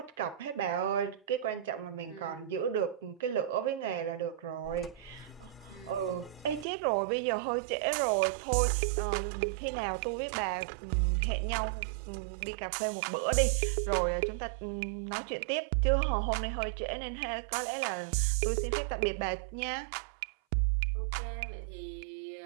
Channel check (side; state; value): left; drops out; at 6.7 s